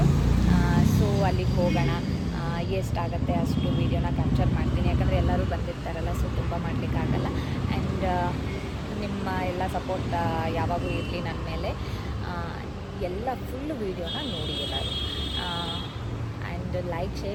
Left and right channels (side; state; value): both; identical; correlation 1.00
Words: ಸೊ ಅಲ್ಲಿಗೆ ಹೋಗೋಣ. ಎಷ್ಟಾಗುತ್ತೆ ಅಷ್ಟು ವೀಡಿಯೋನ ಕ್ಯಾಪ್ಚರ್ ಮಾಡ್ತೀನಿ, ಯಾಕಂದರೆ ಎಲ್ಲರೂ ಬಂದಿರ್ತಾರಲ್ಲ, ಸೊ ತುಂಬ ಮಾಡಲಿಕ್ಕಾಗಲ್ಲ. ಆ್ಯಂಡ್ ನಿಮ್ಮ ಎಲ್ಲ ಸಪೋರ್ಟ್ ಯಾವಾಗೂ ಇರಲಿ ನನ್ನ ಮೇಲೆ. ಎಲ್ಲ ಫುಲ್ ವೀಡಿಯೋನ ನೋಡಿ ಎಲ್ಲರೂ. ಆ್ಯಂಡ್ ಲೈಕ್,